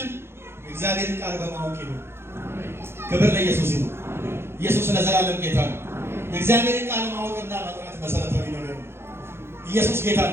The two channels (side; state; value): left; late; 0.12 ms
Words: እግዚአብሔርን ቃል በማወቅ ይሁን። ክብር ለኢየሱስ ይሁን። ኢየሱስ ለዘላለም ጌታ ነው። የእግዚአብሔርን ቃል ማወቅና መጥራት መሰረታዊ ነገር ነው። ኢየሱስ ጌታ